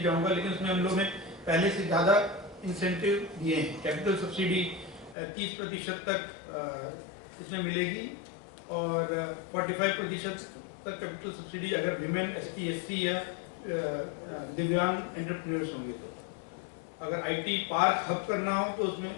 जाऊंगा, लेकिन उसमें हम लोग ने पहले से ज़्यादा इंसेंटिव दिए हैं। कैपिटल सब्सिडी 30% तक इसमें मिलेगी और 45% तक कैपिटल सब्सिडी अगर विमेन ST SC या दिव्यांग एंटरप्रेन्योर्स होंगे तो। अगर IT पार्क हब करना हो तो उसमें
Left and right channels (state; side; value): drops out; right; at 5.2 s